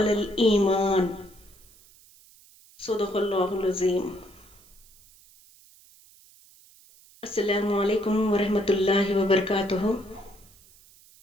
الإيمان صدق اللہ العظیم۔ السلام علیکم ورحمۃ اللہ وبرکاتہ۔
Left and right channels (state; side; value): noise; right; hiss, 26 dB below the sound